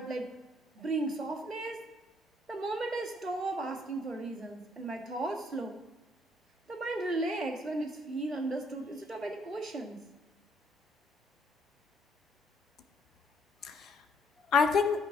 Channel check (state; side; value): normal; both; correlation 0.67